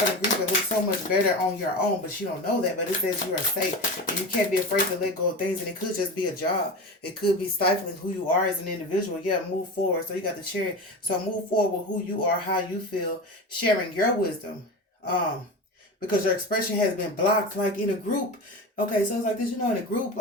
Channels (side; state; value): both; normal; correlation 0.26